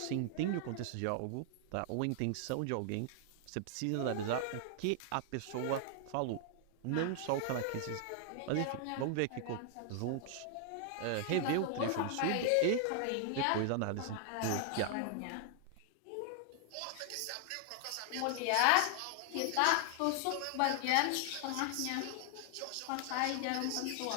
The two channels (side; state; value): both; different; correlation 0.00